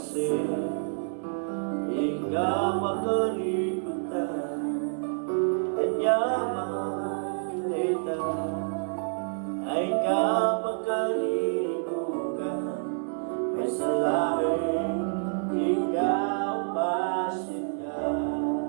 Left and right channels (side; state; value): left; silent; 59 dB below the other